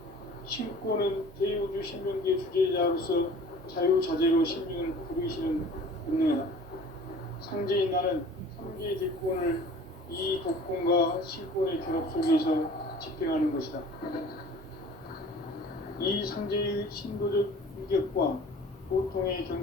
신권은 대우주 신명계 주제자로서 자유자재로 sinh命을 부르시는 운명이다. 상제인 나는 삼계의 대권을 이 독권과 실권의 결합 속에서 집행하는 것이다. 이 상제의 신도적 위격과 고통의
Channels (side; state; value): both; normal; correlation 0.46